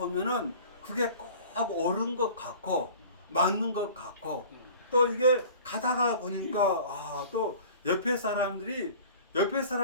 그게 꼭 옳은 것 같고 맞는 것 같고 또 이게 가다가 보니까 또 옆에 사람들이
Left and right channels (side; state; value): both; inverted; correlation -0.44